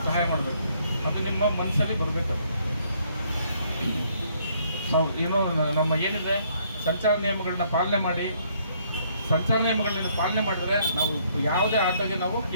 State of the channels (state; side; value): inverted; both; correlation -0.67